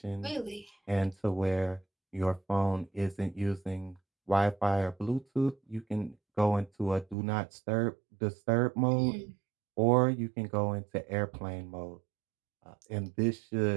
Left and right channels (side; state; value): left; drops out; at 7.2 s